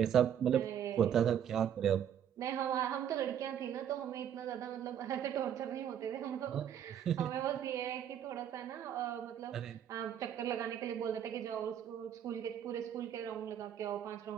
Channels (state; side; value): quieter; left; 9.4 dB